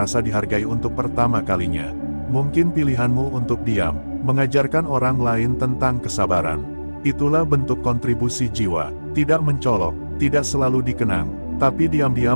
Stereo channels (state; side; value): inverted; both; correlation -1.00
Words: dihargai untuk pertama kalinya. Mungkin pilihanmu untuk diam mengajarkan orang lain tentang kesabaran. Itulah bentuk kontribusi jiwa, tidak mencolok, tidak selalu dikenang, tapi